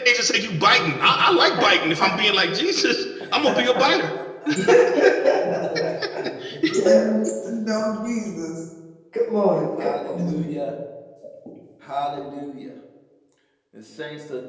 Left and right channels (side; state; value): both; identical; correlation 1.00